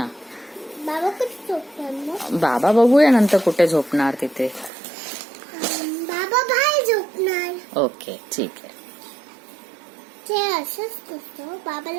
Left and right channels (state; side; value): drops out; left; at 4.7 s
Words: बाबा कुठे झोपणार मग? बाबा बघूया नंतर कुठे झोपणार तिथे. बाबा बाहेर झोपणार. ओके, ठीक आहे. ते असंच असतं,